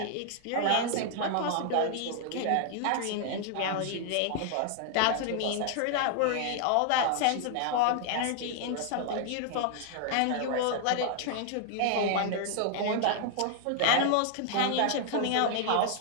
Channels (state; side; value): different; both; correlation 0.00